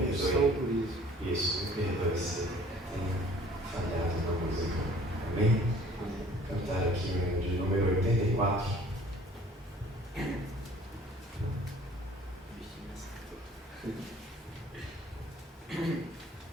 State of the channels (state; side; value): normal; both; correlation 0.53